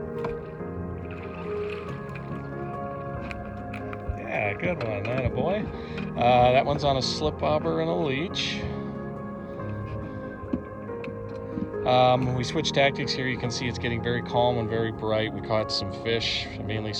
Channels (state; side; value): identical; both; correlation 1.00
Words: Yeah, good one, attaboy. That one's on a slip bobber and a leech. We switched tactics here. You can see it's getting very calm and very bright. We caught some fish, mainly